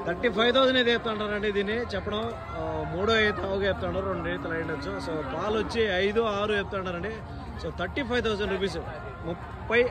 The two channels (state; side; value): identical; both; correlation 1.00